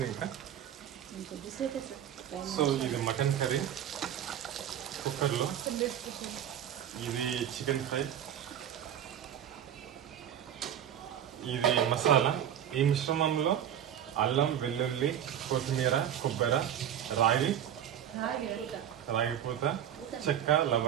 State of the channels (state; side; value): quieter; left; 9.9 dB